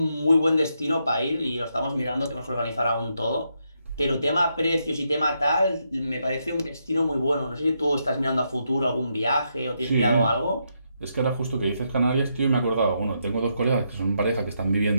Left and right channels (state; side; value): inverted; both; correlation -0.80